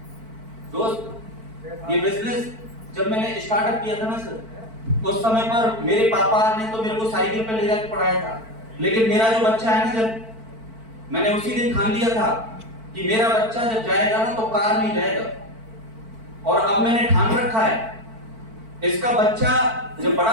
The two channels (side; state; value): left; late; 4.5 ms